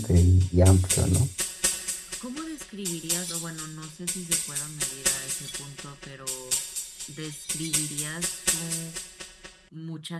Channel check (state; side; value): identical; both; correlation 1.00